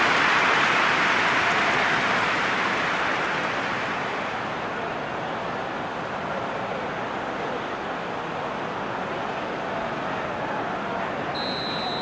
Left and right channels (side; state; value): left; noise; hum, 29 dB below the sound